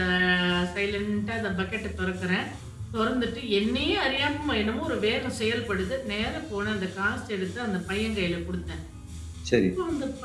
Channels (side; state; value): both; identical; correlation 1.00